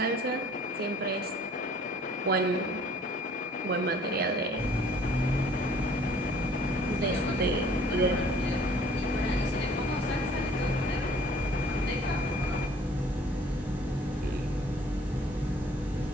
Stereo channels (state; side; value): normal; both; correlation 0.55